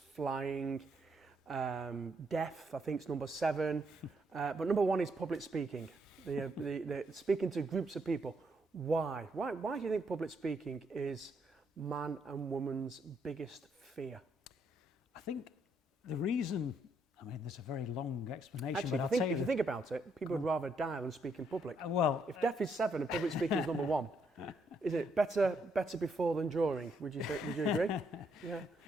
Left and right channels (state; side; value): normal; both; correlation 0.74